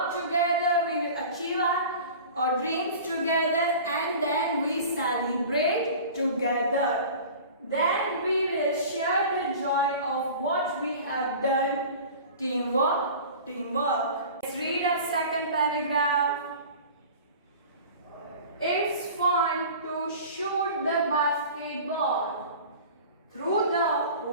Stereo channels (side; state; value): both; inverted; correlation -0.39